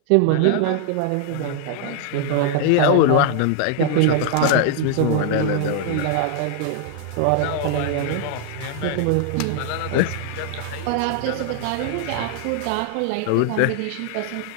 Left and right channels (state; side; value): different; both; correlation 0.00